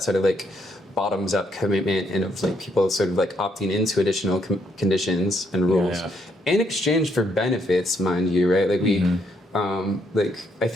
sort of like bottoms-up commitment and of like people sort of like opting into additional conditions and rules in exchange for benefits, mind you, right? Like like I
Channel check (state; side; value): normal; both; correlation 0.73